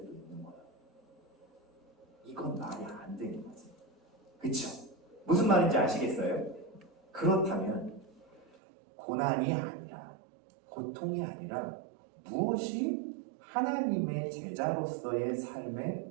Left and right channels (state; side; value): drops out; left; at 8.5 s